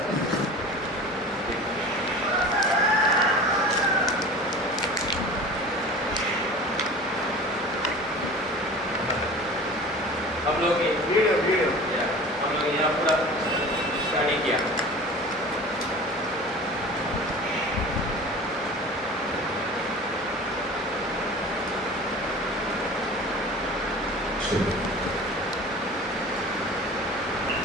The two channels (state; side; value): normal; both; correlation 0.39